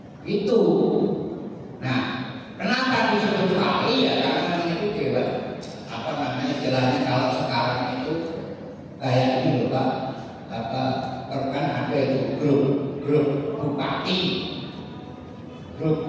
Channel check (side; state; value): both; identical; correlation 1.00